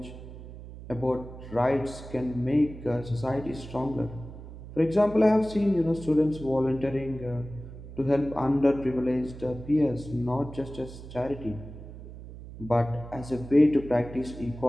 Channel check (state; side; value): noise; right; hum, 14 dB below the sound